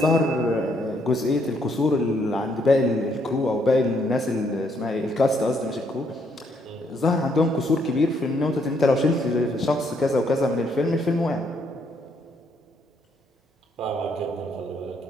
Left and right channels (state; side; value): normal; both; correlation 0.72